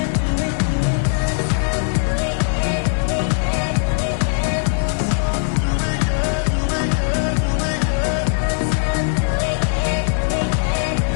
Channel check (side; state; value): right; silent; digital silence